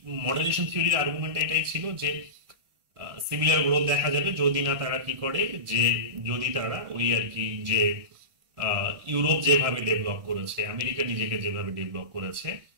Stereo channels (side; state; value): left; late; 1.6 ms